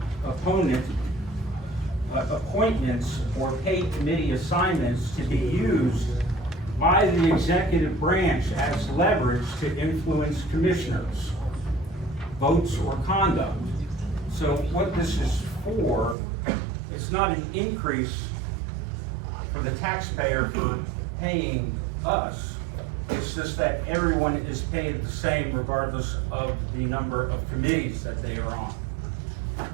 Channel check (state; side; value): drops out; left; at 16.2 s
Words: appointments or paid committee assignments to be used by the executive branch as leverage to influence commissioners' votes or conduct. So what this is for, it's not an increase for the taxpayer for paying us. It's just that everyone is paid the same regardless of the number of committees that they are on.